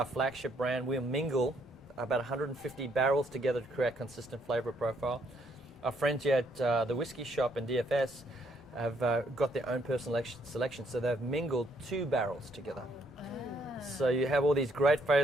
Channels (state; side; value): normal; both; correlation 0.70